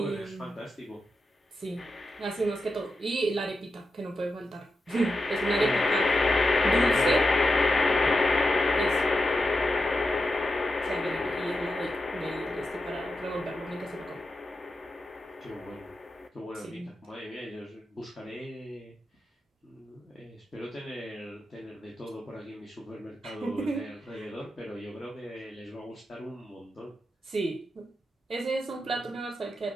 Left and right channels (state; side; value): normal; both; correlation 0.88